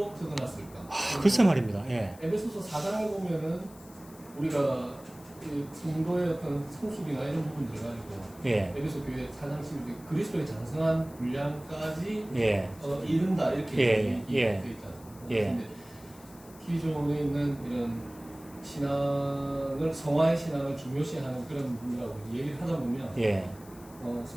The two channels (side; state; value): left; noise; hiss, 22 dB below the sound